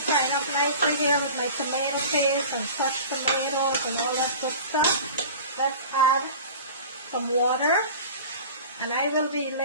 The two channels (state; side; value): inverted; both; correlation -0.38